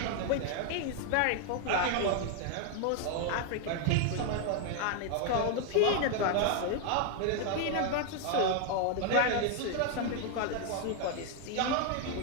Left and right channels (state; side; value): different; both; correlation 0.00